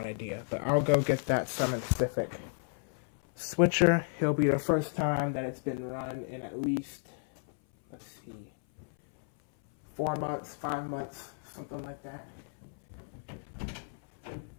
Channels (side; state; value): right; silent; 56 dB below the other